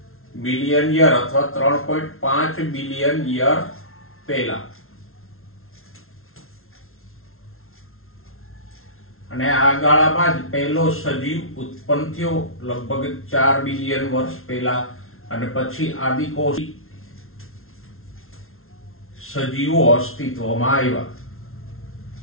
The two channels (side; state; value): right; late; 0.62 ms